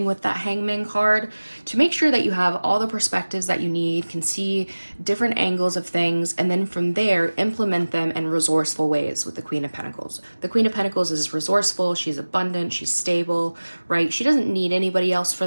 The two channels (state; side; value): inverted; both; correlation -1.00